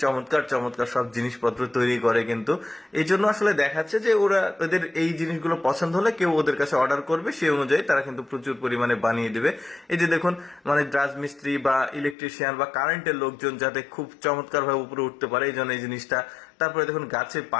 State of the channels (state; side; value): drops out; right; at 12.2 s